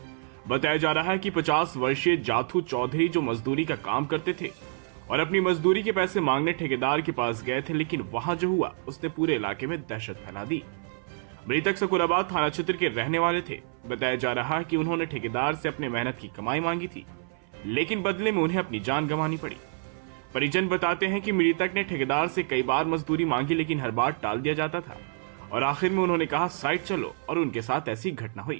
बताया जा रहा है कि 50 वर्षीय जाथू चौधरी जो मजदूरी का काम करते थे और अपनी मजदूरी के पैसे मांगने ठेकेदार के पास गए थे, लेकिन वहां जो हुआ उसने पूरे इलाके में दहशत फैला दी। मृतक सकुराबाद थाना क्षेत्र के रहने वाले थे। बताया जा रहा है कि उन्होंने ठेकेदार से अपने मेहनत की कमाई मांगी थी, लेकिन बदले में उन्हें अपनी जान गंवानी पड़ी। परिजन बताते हैं कि मृतक ने ठेकेदार से कई बार मजदूरी मांगी, लेकिन हर बार टाल दिया जाता था और आखिर में उन्होंने कहा साइड चलो, और उनके साथ ऐसी घटना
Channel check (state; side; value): silent; left; 56 dB below the other